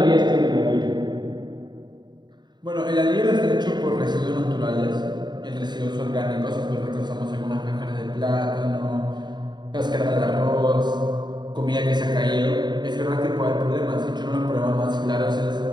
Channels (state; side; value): late; left; 0.21 ms